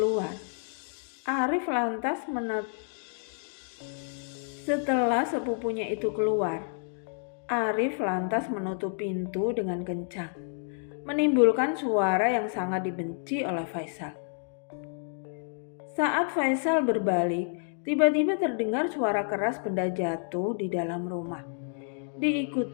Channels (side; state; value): right; silent; 58 dB below the other